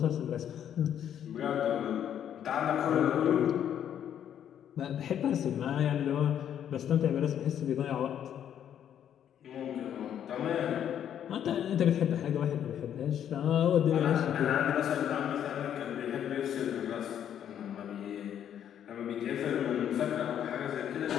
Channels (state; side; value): quieter; right; 9.7 dB